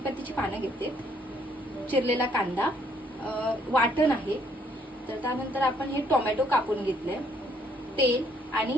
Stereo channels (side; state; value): both; normal; correlation 0.67